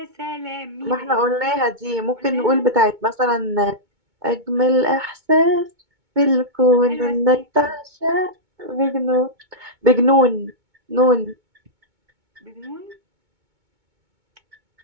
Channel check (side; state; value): left; late; 2.2 ms